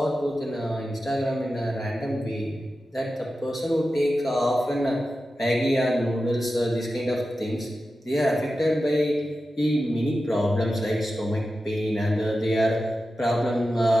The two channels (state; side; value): normal; both; correlation 0.92